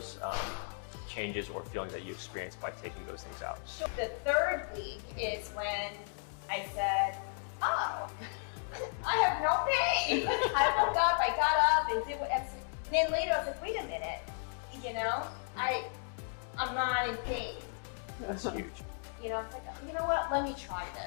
changes or feelings that you experienced by taking those things out. The third week is when I said, oh, I have no pain. I woke up, I got up and did what, and then later I was like, wait a minute, I'm not in pain. That's huge. I was like, you know what, let me try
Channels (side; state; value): right; silent; 55 dB below the other